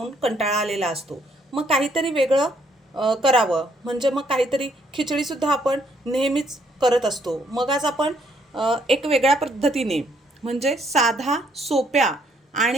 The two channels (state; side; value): normal; both; correlation 0.68